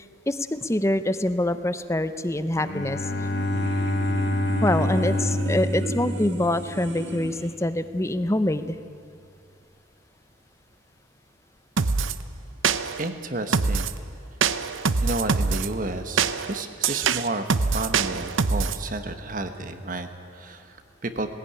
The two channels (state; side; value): normal; both; correlation 0.62